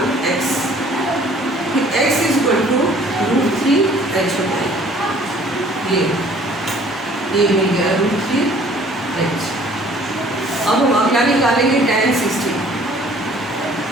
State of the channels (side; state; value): both; normal; correlation 0.55